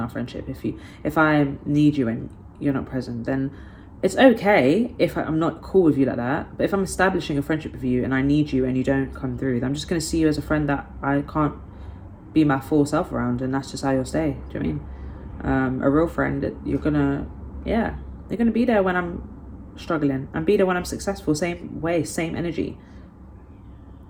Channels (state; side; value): identical; both; correlation 1.00